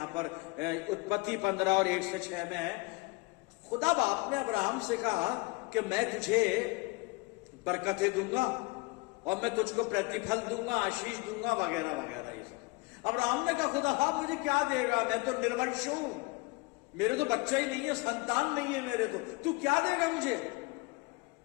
पर उत्पत्ति 15 और 1 से 6 में है। खुदा बाप ने अब्राहम से कहा कि मैं तुझे बरकतें दूंगा और मैं तुझको प्रतिफल दूंगा, आशीष दूंगा, वगैरह वगैरह ये सब। अब्राहम ने कहा खुदा बाप मुझे क्या देगा? मैं तो निर्वंश हूं, मेरे तो बच्चा ही नहीं है, संतान नहीं है मेरे, तो तू क्या देगा मुझे?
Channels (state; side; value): quieter; right; 26.3 dB